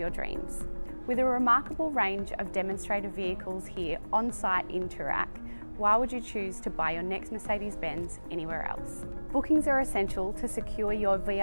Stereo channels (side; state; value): both; inverted; correlation -1.00